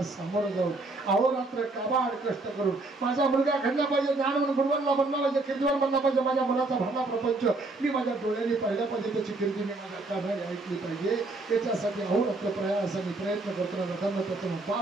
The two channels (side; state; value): left; quieter; 3.2 dB